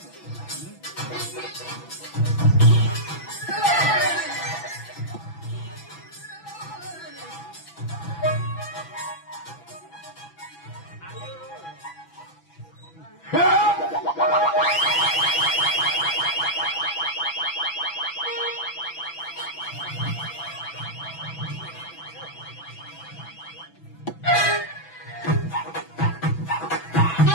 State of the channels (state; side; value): late; right; 6.0 ms